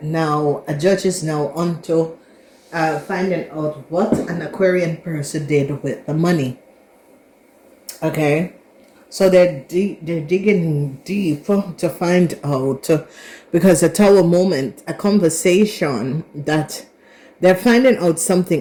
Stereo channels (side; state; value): both; identical; correlation 1.00